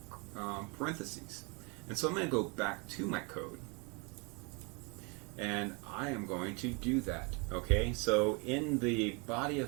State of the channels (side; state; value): left; quieter; 31.1 dB